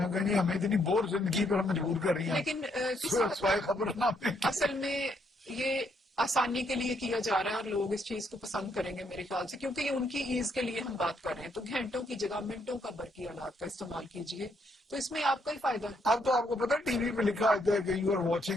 नहीं हमें इतनी बोर जिंदगी पर मजबूर कर रही हैं। लेकिन खबरनामे असल में ये आसानी के लिए किया जा रहा है और लोग इस चीज को पसंद करेंगे मेरे ख्याल से, क्योंकि ये उनकी ईज के लिए हम बात कर रहे हैं। तो घंटों की जगह मिनटों का बरकी आलात का इस्तेमाल कीजिए, तो इसमें आपका ही फायदा है। अब तो आपको पता है टीवी पे लिखा होता है कि you are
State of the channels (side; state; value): both; normal; correlation 0.73